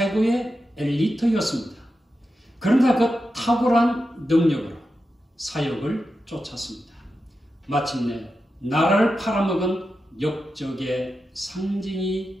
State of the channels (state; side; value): normal; both; correlation 0.90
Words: 엘리트였습니다. 그러나 그 탁월한 능력으로 사역을 쫓았습니다. 마침내 나라를 팔아먹은 역적의 상징이